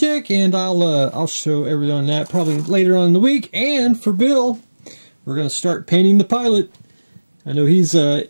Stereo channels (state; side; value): inverted; both; correlation -1.00